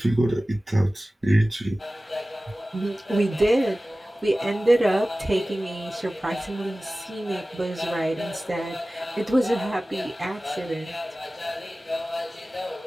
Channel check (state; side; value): normal; both; correlation 0.97